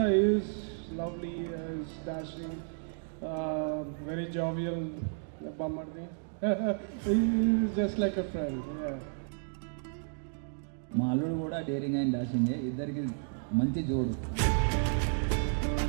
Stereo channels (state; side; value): silent; left; digital silence